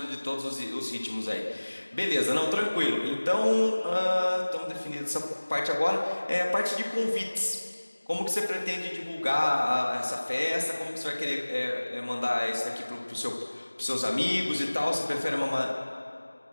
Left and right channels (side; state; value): both; inverted; correlation -1.00